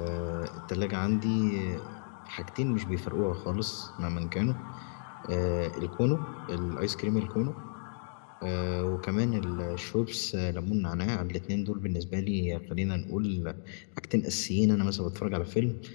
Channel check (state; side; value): silent; right; digital silence